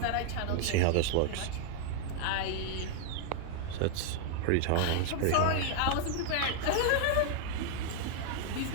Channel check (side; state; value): both; different; correlation -0.01